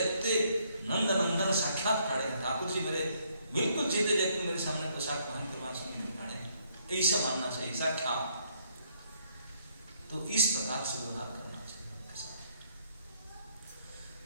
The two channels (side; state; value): both; inverted; correlation -0.69